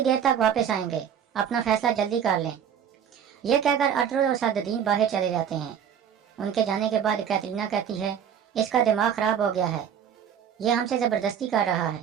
देर तक वापस आएंगे, अपना फैसला जल्दी कर लें। यह कहकर अर्तुगरुल और सादुद्दीन बाहर चले जाते हैं। उनके जाने के बाद कैटरीना कहती है, इसका दिमाग खराब हो गया है, यह हमसे ज़बरदस्ती कर रहा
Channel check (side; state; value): left; quieter; 8.5 dB